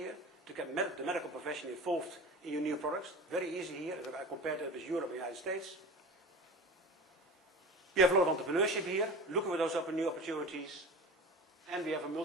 to get the medical profession involved in your new products. Very easy here, if I compare that with Europe and the United States. We have a lot of entrepreneurship here, looking for those new opportunities. And we have a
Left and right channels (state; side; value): normal; both; correlation 0.34